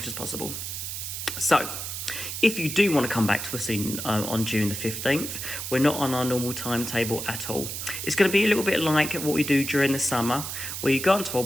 as possible. So, if you do want to come back to us on June the 15th, we're not on our normal timetable at all. It's going to be a little bit like what we do during the summer, where you go onto our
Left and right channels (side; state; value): right; noise; hiss, 6 dB below the sound